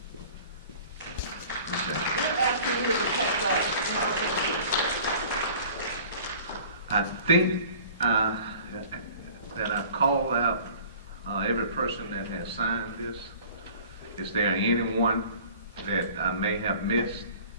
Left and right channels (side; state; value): both; inverted; correlation -0.47